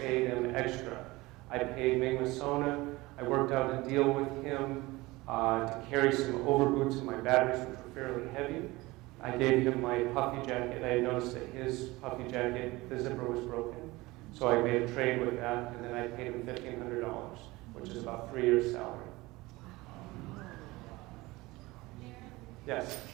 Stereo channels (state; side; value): quieter; left; 21.0 dB